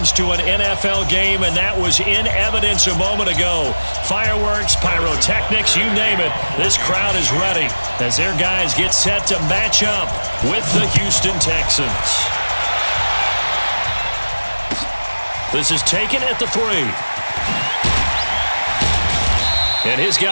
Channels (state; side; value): inverted; both; correlation -1.00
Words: to an NFL game, and that was in evidence a moment ago. Fireworks, pyrotechnics, you name it. This crowd is ready as their guys get set to match up with the Houston Texans. This is taken at the 3. And his